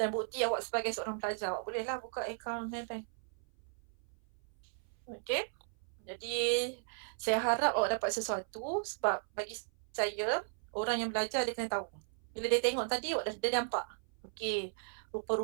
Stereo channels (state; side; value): silent; left; 54 dB below the other